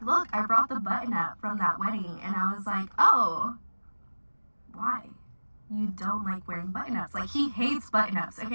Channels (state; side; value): inverted; both; correlation -1.00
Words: look, I brought the button up from that wedding. And I was like, oh, why? You don't like wearing button ups. Like, he hates button ups.